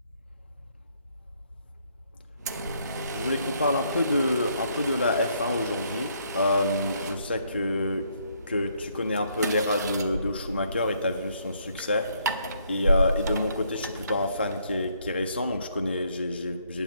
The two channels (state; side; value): inverted; both; correlation -0.70